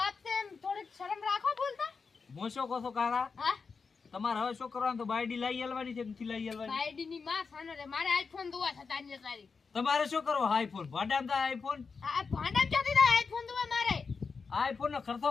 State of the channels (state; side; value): quieter; right; 5.1 dB